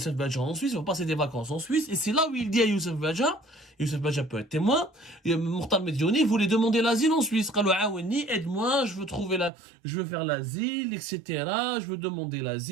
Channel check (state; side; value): drops out; left; at 9.5 s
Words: Badja en Suisse, il va passer des vacances en Suisse, et c'est là où il dit à Youssef Badja peut être témoin, Mokhtar Mediouni voulait demander l'asile en Suisse. قال له عاوني, aide-moi, je veux faire l'asile, etc. Je veux demander